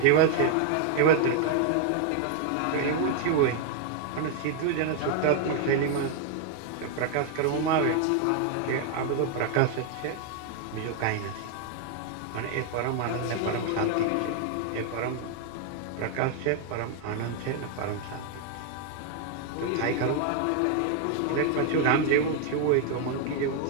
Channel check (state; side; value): different; both; correlation 0.00